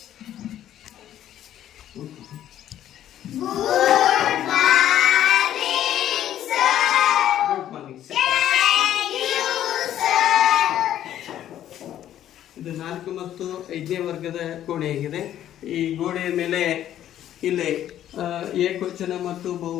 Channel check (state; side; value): quieter; right; 11.6 dB